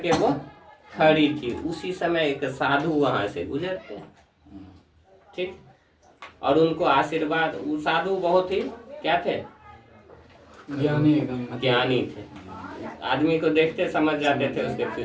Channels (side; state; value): both; identical; correlation 1.00